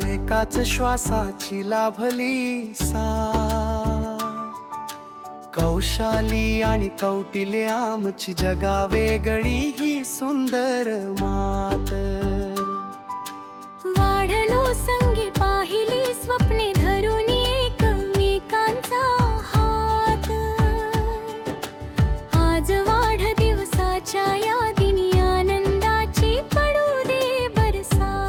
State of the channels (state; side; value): identical; both; correlation 1.00